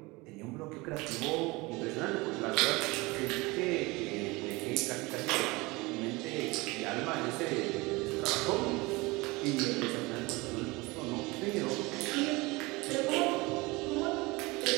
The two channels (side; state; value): left; quieter; 23.6 dB